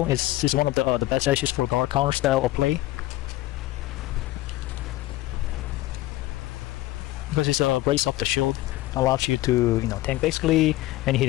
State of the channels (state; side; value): quieter; right; 17.1 dB